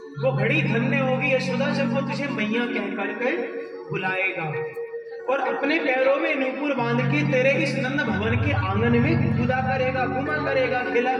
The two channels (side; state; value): both; identical; correlation 1.00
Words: वो घड़ी धन्य होगी यशोदा जब वो तुझे मैया कह करके बुलाएगा, और अपने पैरों में नूपुर बांध के तेरे इस नंद भवन के आंगन में कूदा करेगा, घुमा करेगा, खेला